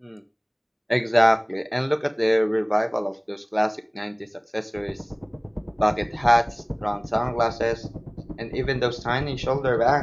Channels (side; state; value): both; identical; correlation 1.00